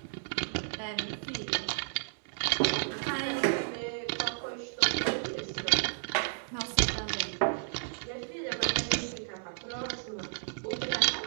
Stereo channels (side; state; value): left; silent; digital silence